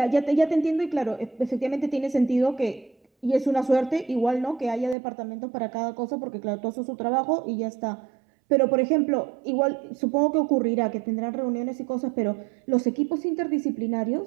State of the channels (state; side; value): drops out; left; at 5.0 s